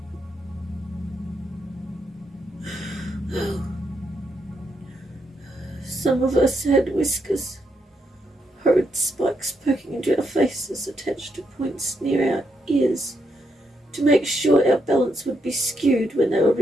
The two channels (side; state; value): both; normal; correlation 0.79